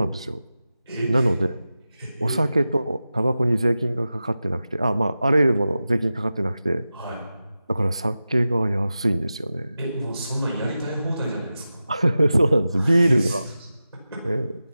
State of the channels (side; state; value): both; inverted; correlation -0.93